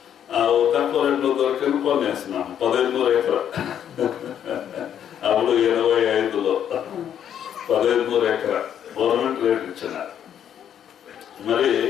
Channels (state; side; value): quieter; right; 9.5 dB